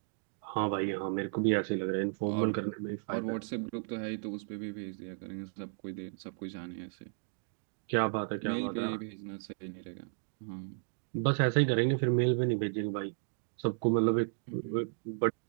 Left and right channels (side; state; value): left; silent; digital silence